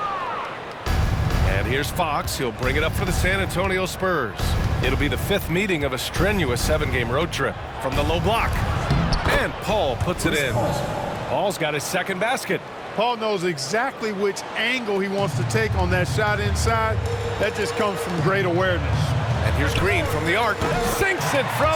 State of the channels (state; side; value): identical; both; correlation 1.00